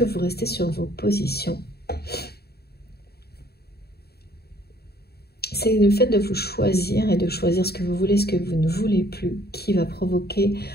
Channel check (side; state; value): right; late; 0.46 ms